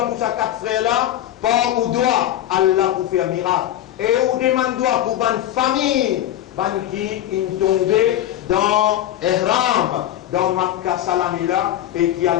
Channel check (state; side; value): quieter; right; 12.5 dB